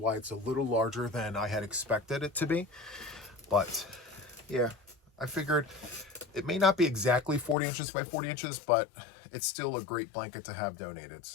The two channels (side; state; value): right; drops out; at 7.6 s